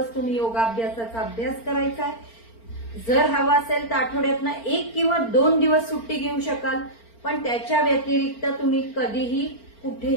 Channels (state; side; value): late; right; 4.4 ms